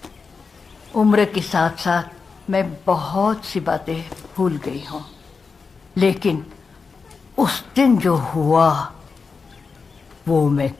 उम्र के साथ साथ मैं बहुत सी बातें भूल गई हूं, लेकिन उस दिन जो हुआ वो मैं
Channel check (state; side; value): quieter; right; 4.9 dB